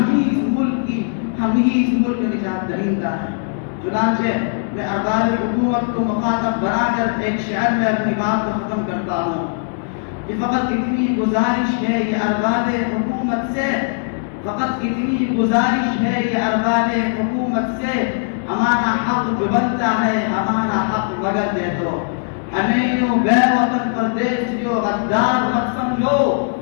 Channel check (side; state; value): right; silent; digital silence